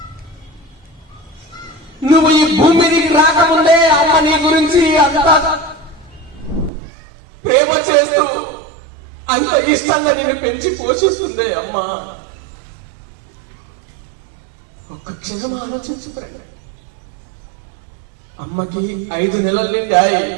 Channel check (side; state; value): left; drops out; at 6.7 s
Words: నువ్వు ఈ భూమి మీదకి రాకముందే అమ్మ నీ గురించి అంత ప్రేమ చేస్తూ అంత ఇష్టంగా నేను పెంచి పోషిస్తుంది. అమ్మ, ఒక్క క్షణం ఆలోచించు. అమ్మకి 5 నెలలు నిండాయి.